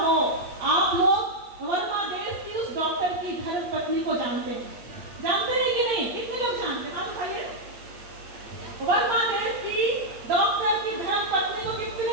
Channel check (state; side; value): late; left; 8.5 ms